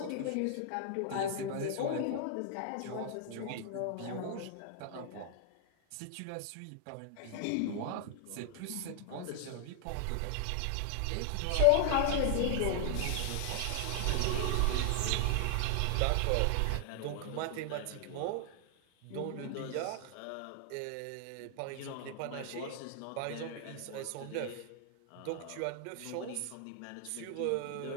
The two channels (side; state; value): both; different; correlation 0.00